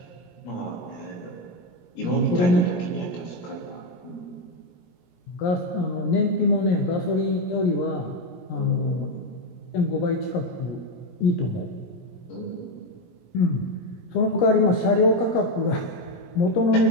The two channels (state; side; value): late; right; 17 ms